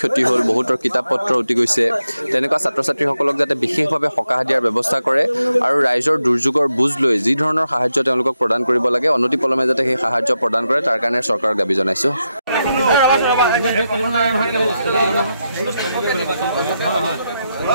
ক্ষতি হ'ল বহুতৰ কিতাপ পত্ৰ উটি গৈছে তেনেকুৱা ছাত্ৰ ছাত্ৰীসকলক যাতে বিশেষভাৱে সকাহ দিয়াৰ ব্যৱস্থা কৰে আৰু ৰাইজৰ দুৰ্যোগৰ বুজ লৈ যি ধৰণৰ সাহায্য তেওঁলোকক প্ৰদান কৰিব লাগে অনতিপলমে যাতে সেই সাহায্য প্ৰদান কৰে তাৰ কাৰণে চৰকাৰক দাবী জনাইছোঁ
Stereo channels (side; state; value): both; inverted; correlation -0.86